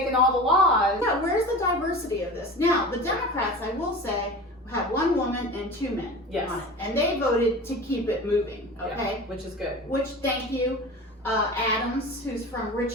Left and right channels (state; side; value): normal; both; correlation 0.34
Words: all the laws? yeah, where's the diversity of this? Now, the Democrats, I will say, have one woman and 2 men Yes. on it. And they voted to keep it moving, okay? Yeah, which is good. Which, thank you, Adams, who's from